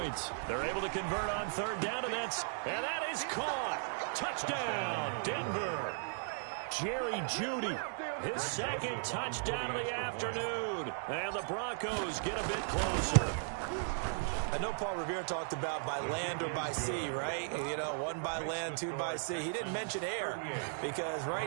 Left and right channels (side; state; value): left; silent; 53 dB below the other